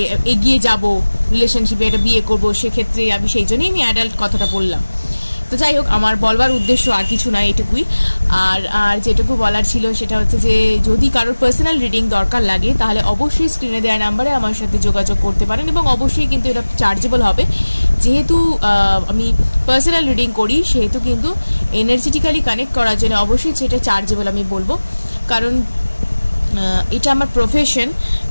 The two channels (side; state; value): both; inverted; correlation -1.00